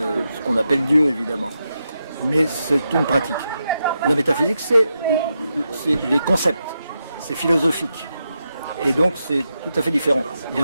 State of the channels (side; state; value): both; inverted; correlation -0.86